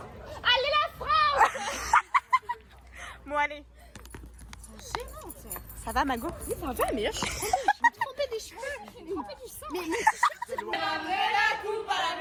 Allez la France. Bon, allez. Ça va, Mago? Oui, ça va, mais là, je suis trempée des cheveux. Je suis trempée du sang. Mais Ramenez la coupe à la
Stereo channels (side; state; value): both; identical; correlation 1.00